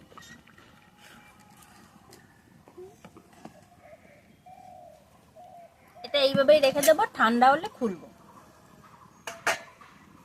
এটা এইভাবেই রেখে দেবো, ঠান্ডা হলে খুলবো।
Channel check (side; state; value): both; identical; correlation 1.00